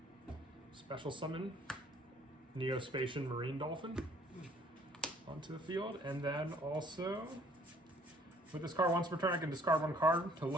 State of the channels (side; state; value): both; normal; correlation 0.60